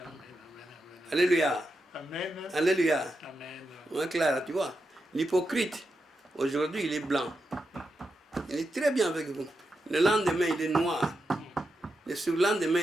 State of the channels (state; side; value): normal; both; correlation 0.87